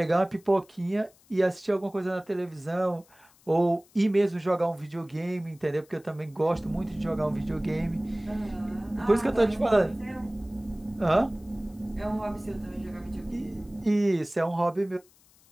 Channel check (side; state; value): left; noise; hiss, 29 dB below the sound